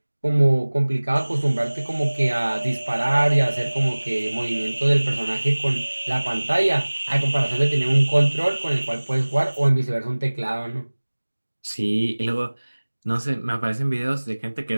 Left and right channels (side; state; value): both; inverted; correlation -1.00